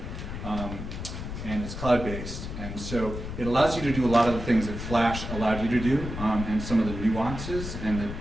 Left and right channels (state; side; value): noise; left; rumble, 7 dB below the sound